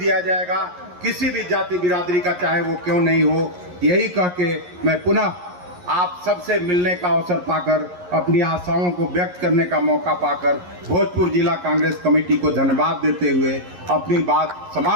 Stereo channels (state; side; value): late; left; 11 ms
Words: जाएगा, किसी भी जाति बिरादरी का चाहे वो क्यों नहीं हो। यही कह के मैं पुनः आप सबसे मिलने का अवसर पाकर, अपनी आशाओं को व्यक्त करने का मौका पाकर भोजपुर जिला कांग्रेस कमेटी को धन्यवाद देते हुए अपनी बात